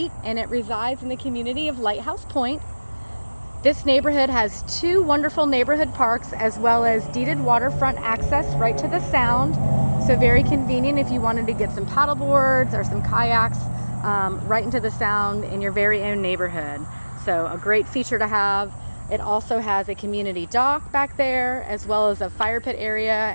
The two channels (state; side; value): inverted; both; correlation -1.00